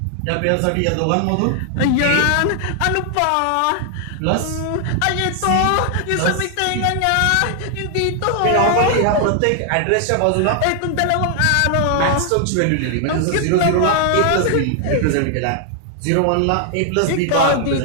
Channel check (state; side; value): different; both; correlation 0.00